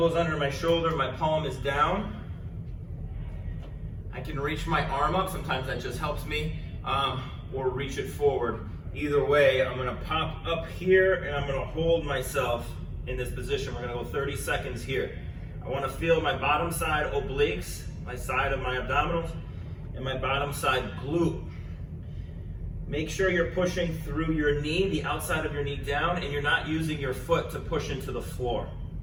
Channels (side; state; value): both; identical; correlation 1.00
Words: under my shoulder, my palm is down. I can reach my arm up, sometimes that just helps me, or reach it forward. Either way, I'm gonna pop up here and I'm gonna hold myself in this position. We're gonna go 30 seconds here. I wanna feel my bottom side obliques, my side of my abdominals, and my bottom side glute. Make sure you're pushing through your knee, the outside of your knee down, and you're not using your foot to push into the floor.